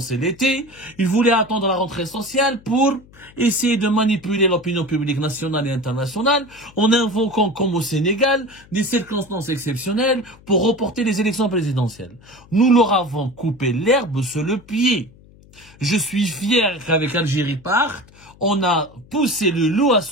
c'est l'été. Ils voulaient attendre la rentrée sociale pour essayer de manipuler l'opinion publique nationale et internationale en invoquant, comme au Sénégal, des circonstances exceptionnelles pour reporter les élections présidentielles. Nous leur avons coupé l'herbe sous le pied. Je suis fier qu'avec Algérie Part, on a poussé le loup à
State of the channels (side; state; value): left; noise; hum, 25 dB below the sound